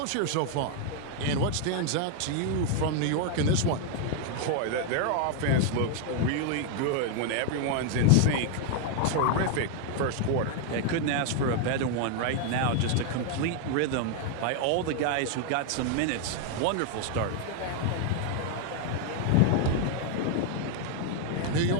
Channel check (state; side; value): different; both; correlation 0.00